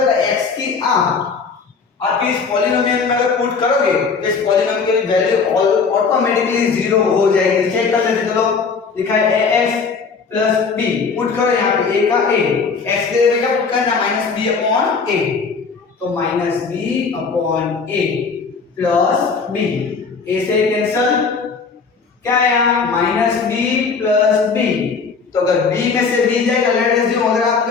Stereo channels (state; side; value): quieter; right; 5.1 dB